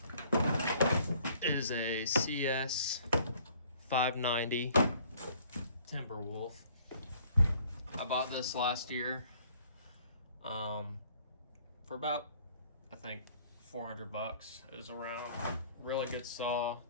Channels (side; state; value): both; inverted; correlation -0.58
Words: is a Cs590 Timberwolf. I bought this last year for about, I think, $400 is around. Really good saw.